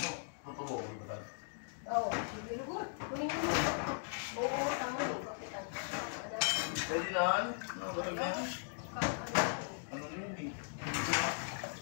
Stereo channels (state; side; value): silent; right; digital silence